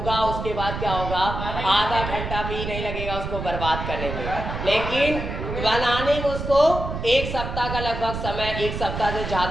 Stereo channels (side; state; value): right; noise; rumble, 5 dB below the sound